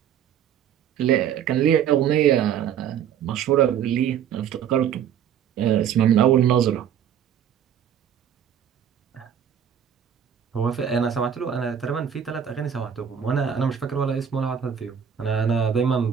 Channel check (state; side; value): quieter; left; 8.7 dB